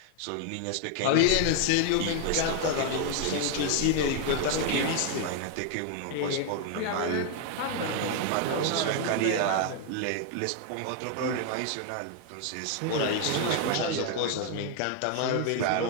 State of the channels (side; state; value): both; different; correlation 0.00